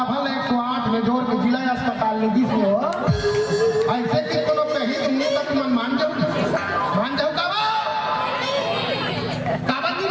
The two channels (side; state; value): both; identical; correlation 1.00